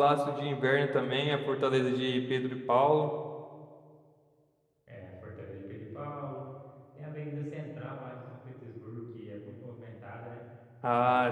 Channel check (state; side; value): identical; both; correlation 1.00